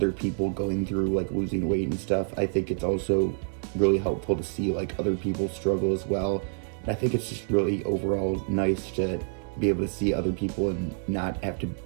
people going through like losing weight and stuff, I think it's also really helpful to see like other people struggle as well. And I think it's just really overall nice to be able to see other people and not have to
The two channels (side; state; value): left; silent; 60 dB below the other